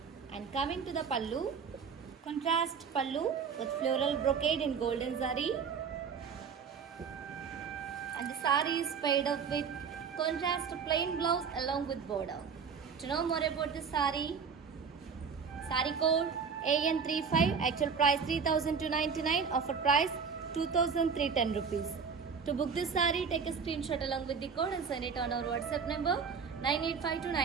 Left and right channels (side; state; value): left; quieter; 6.1 dB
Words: And coming to the pallu, contrast pallu with floral brocade in golden zari. And the saree is paired up with contrast plain blouse along with border. To know more about this saree, saree code AN35, actual price 3,299, offer price 2,310 rupees. To book this saree, take a screenshot along with the code and send it on our WhatsApp number